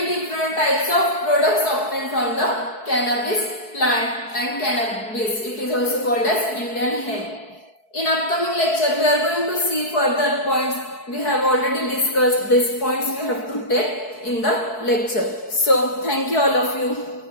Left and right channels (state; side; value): late; right; 4.6 ms